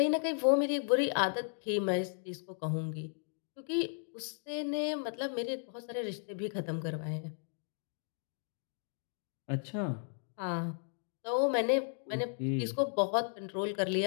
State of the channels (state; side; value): silent; right; digital silence